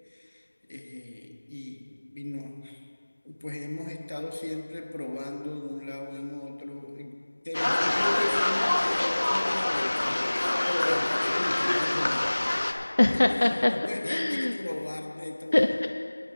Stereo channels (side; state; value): both; inverted; correlation -1.00